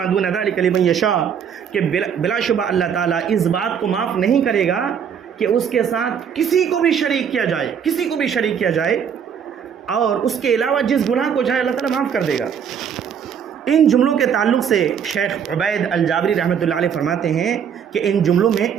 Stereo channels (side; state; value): left; quieter; 7.7 dB